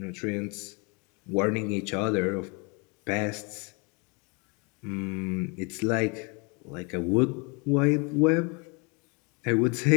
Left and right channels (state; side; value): quieter; right; 32.0 dB